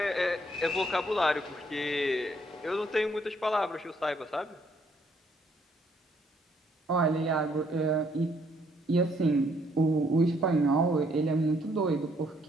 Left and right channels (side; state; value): both; normal; correlation 0.68